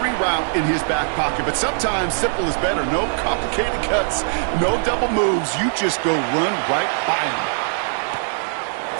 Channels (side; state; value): left; silent; 65 dB below the other